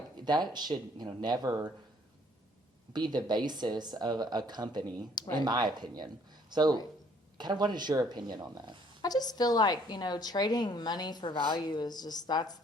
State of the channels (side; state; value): both; normal; correlation 0.62